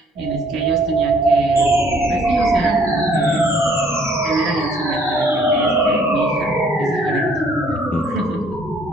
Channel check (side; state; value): both; normal; correlation 0.61